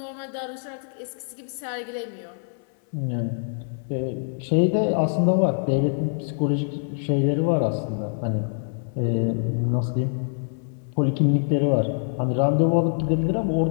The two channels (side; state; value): right; silent; 62 dB below the other